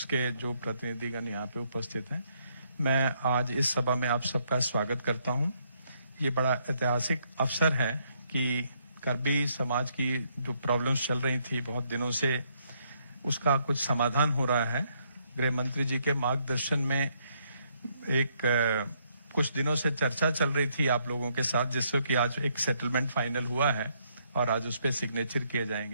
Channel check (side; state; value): both; inverted; correlation -0.72